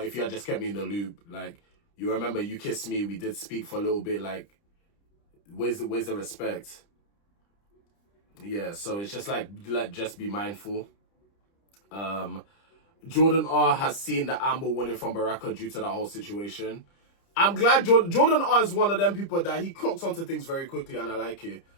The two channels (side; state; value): right; late; 30 ms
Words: you had just kept me in the loop, like, you remember you kissed me, we did speak for a little bit, like, where's the respect? Yeah, so it's just like just be mindful. Jordan R has seen the Amber warning from Baraka due to that whole situation. I'm glad Jordan R is one of them people that he clocks onto things very quickly, and I like it.